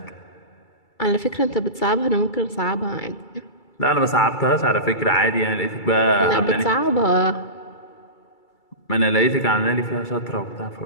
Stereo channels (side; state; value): right; late; 2.3 ms